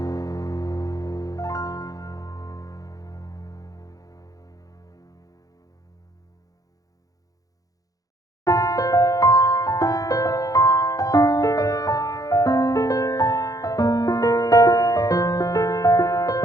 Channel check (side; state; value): right; late; 0.17 ms